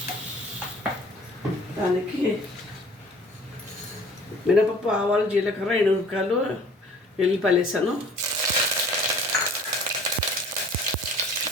దానికి మినపప్పు, ఆవాలు, జీలకర్ర, ఎండుమిరపకాయలు, వెల్లిపాయలు వేసాను.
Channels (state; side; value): normal; both; correlation 0.50